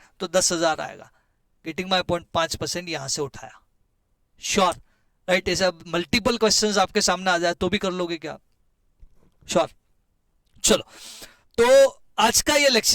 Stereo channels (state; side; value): identical; both; correlation 1.00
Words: तो 10,000 आएगा। Getting my point? 5% यहां से उठाया। Sure, right. ऐसा मल्टीपल क्वेश्चंस आपके सामने आ जाए तो भी कर लोगे क्या? श्योर। चलो, तो आज का ये